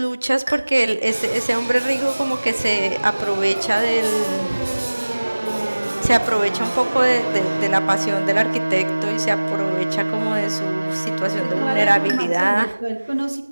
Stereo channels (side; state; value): both; inverted; correlation -1.00